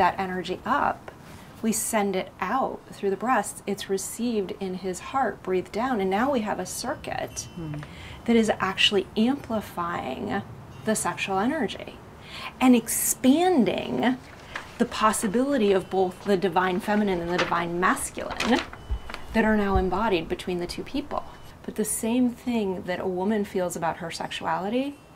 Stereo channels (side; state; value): both; identical; correlation 1.00